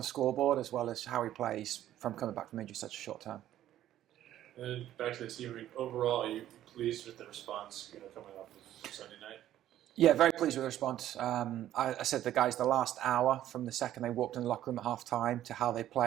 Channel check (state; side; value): quieter; left; 12.5 dB